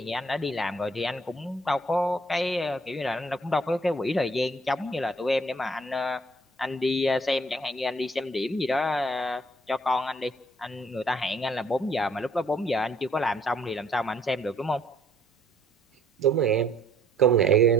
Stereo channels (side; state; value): both; normal; correlation 0.63